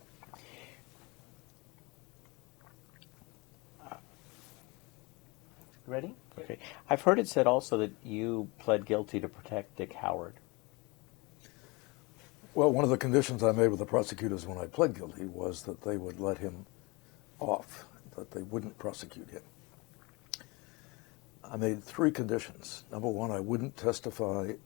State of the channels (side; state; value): right; quieter; 26.2 dB